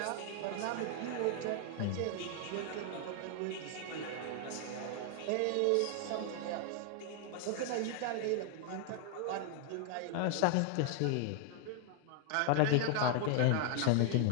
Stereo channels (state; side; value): different; both; correlation 0.00